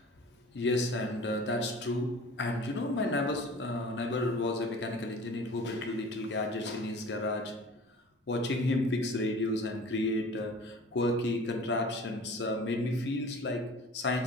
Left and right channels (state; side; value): normal; both; correlation 0.43